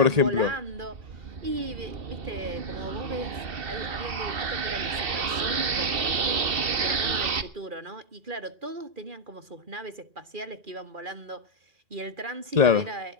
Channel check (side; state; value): left; late; 2.7 ms